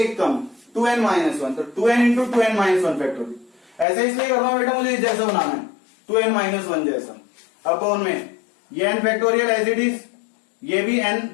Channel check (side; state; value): right; drops out; at 3.9 s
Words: टर्म 2n माइनस 1, तो 2n into 2n minus 1 factorial. ऐसे इसलिए कर रहा हूं बेटा मुझे जैसा बनाना है 2n माइनस 1 जैसा। अपॉन में ये n factorial as it is, ये भी n